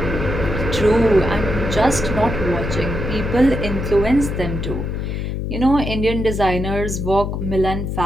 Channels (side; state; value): left; noise; hum, 3 dB below the sound